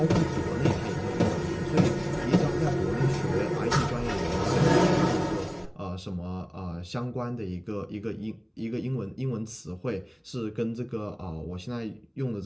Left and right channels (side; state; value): both; identical; correlation 1.00